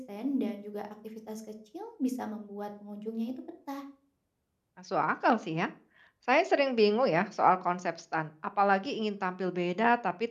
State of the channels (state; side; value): identical; both; correlation 1.00